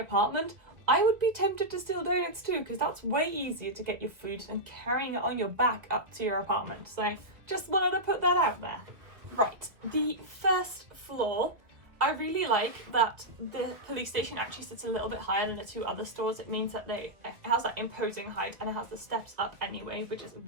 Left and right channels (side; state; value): left; late; 1.9 ms